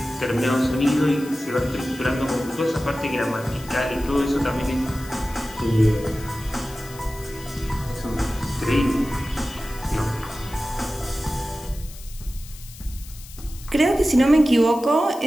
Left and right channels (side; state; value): left; noise; hiss, 18 dB below the sound